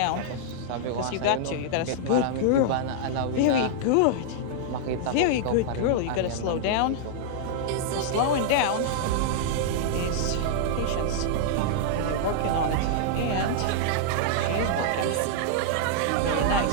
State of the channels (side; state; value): both; different; correlation -0.01